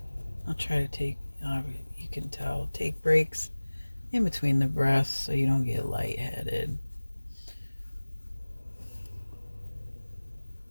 I'll try to take, you can tell, take breaks in between the breaths so you don't get lightheaded.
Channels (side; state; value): both; inverted; correlation -1.00